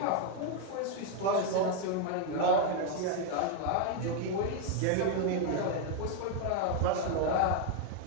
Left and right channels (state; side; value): different; both; correlation 0.01